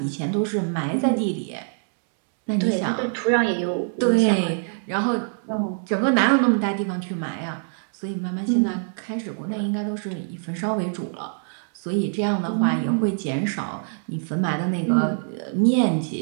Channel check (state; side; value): silent; left; digital silence